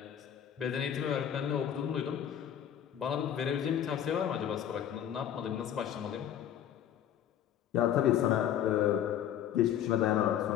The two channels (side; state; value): right; quieter; 10.1 dB